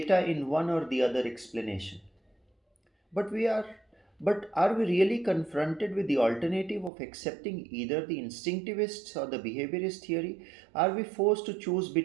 in one or the other explanation. But we are but are we really confronted with the alternative of accepting either the instinctivist or the behaviorist theory? Are we forced to choose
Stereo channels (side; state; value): left; drops out; at 6.9 s